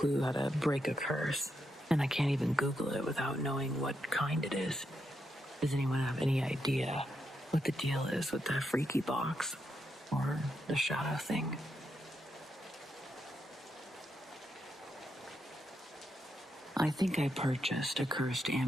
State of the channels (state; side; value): normal; both; correlation 0.82